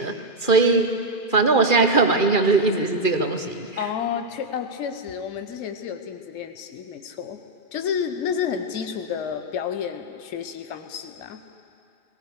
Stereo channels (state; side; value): late; right; 2.4 ms